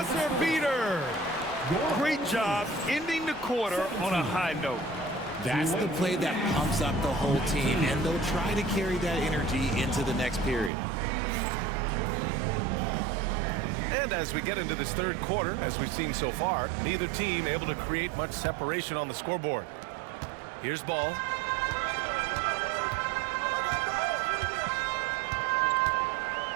beater. Great job ending the quarter on a high note. That's the play that pumps up the whole team, and they'll try to carry that energy into the next period. And as we get into this third quarter, as we've seen so far, neither team able to create much separation on the scoreboard. Here's Ball.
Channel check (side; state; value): left; drops out; at 10.7 s